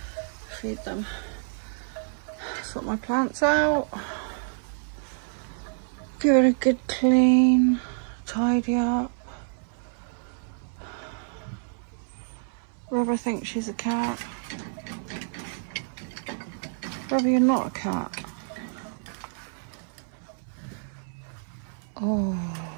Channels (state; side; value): silent; left; 59 dB below the other